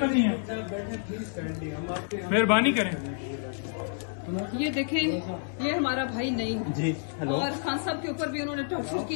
मेहरबानी करें। ये देखें, ये हमारा भाई नहीं जी। और खान साहब के ऊपर भी उन्होंने टॉर्चर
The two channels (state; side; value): silent; right; 59 dB below the other